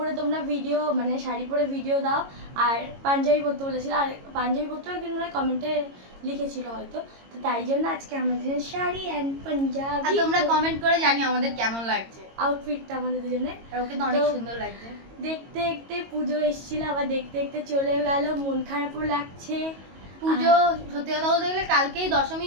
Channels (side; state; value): left; late; 22 ms